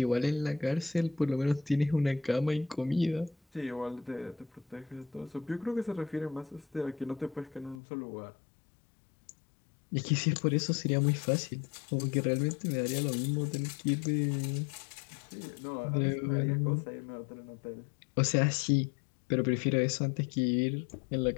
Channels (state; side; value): drops out; right; at 7.8 s